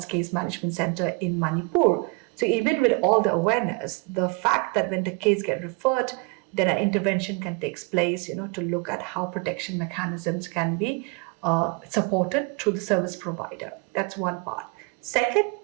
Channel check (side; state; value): left; quieter; 30.8 dB